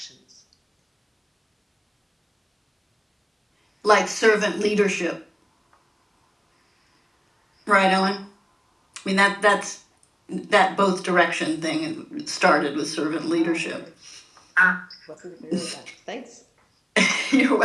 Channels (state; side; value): identical; both; correlation 1.00